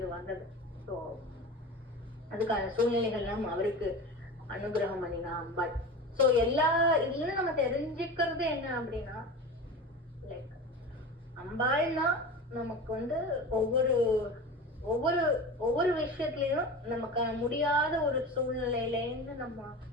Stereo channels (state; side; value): normal; both; correlation 0.31